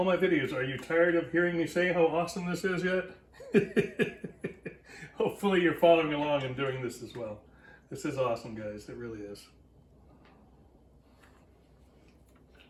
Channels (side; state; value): both; identical; correlation 1.00